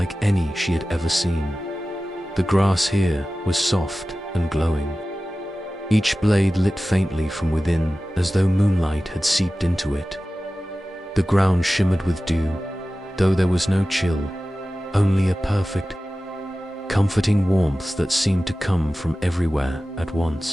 any she had ever seen. The grass here was soft and glowing, each blade lit faintly from within as though moonlight had seeped into it. The ground shimmered with dew, though there was no chill, only a perfect, comforting warmth that seemed to come from everywhere at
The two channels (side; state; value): both; normal; correlation 0.96